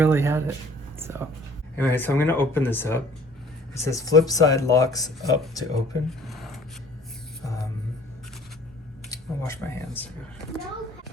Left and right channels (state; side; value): normal; both; correlation 0.53